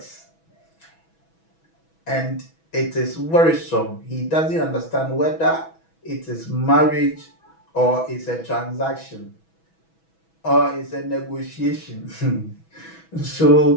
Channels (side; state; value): right; late; 6.1 ms